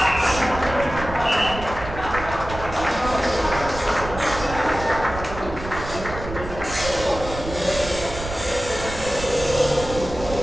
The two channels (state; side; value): noise; right; rumble, 10 dB below the sound